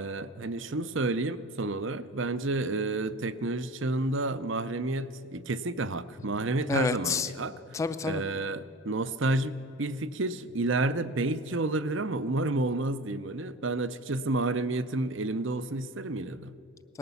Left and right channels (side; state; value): both; normal; correlation 0.35